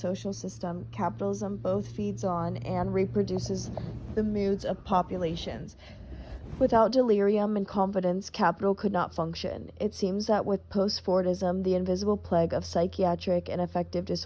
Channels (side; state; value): both; identical; correlation 1.00